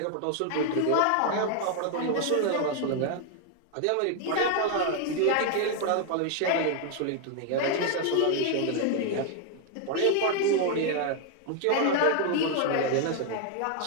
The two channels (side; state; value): both; different; correlation 0.00